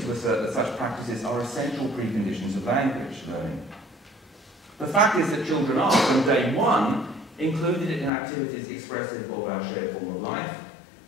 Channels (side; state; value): right; drops out; at 8.1 s